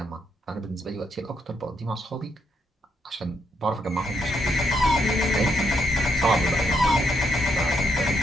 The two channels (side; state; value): both; normal; correlation 0.77